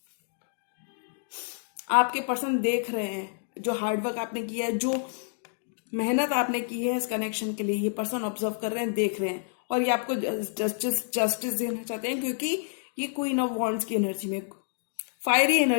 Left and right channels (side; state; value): right; silent; digital silence